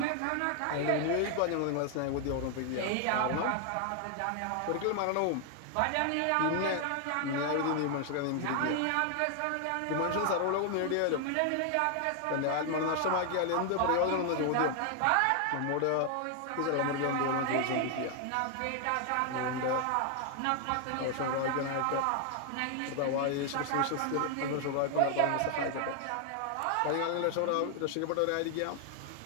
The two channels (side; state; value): both; different; correlation 0.00